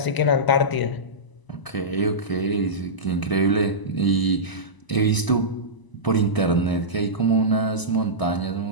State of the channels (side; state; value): right; late; 1.0 ms